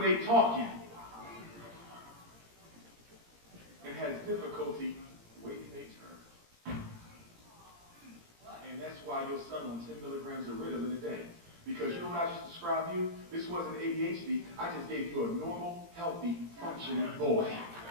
they're talking. And has difficulty waiting their turn. And that's why your son on 10 milligrams of Ritalin a day. Because you know what I just described you? This wasn't ADHD. I just gave you a normal, healthy, functioning boy.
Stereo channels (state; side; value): late; left; 17 ms